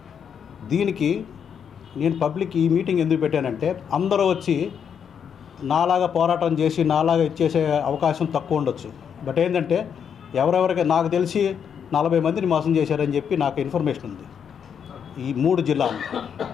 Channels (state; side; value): quieter; right; 7.6 dB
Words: దీనికి నేను పబ్లిక్ ఈ మీటింగ్ ఎందుకు పెట్టానంటే అందరూ వచ్చి నాలాగా పోరాటం చేసి నాలాగా ఇచ్చేసే అవకాశం తక్కువ ఉండొచ్చు. బట్ ఏంటంటే ఎవరెవరికి నాకు తెలిసి 40 మందిని మోసం చేశారని చెప్పి నాకు ఇన్ఫర్మేషన్ ఉంది ఈ 3 జిల్లాలు.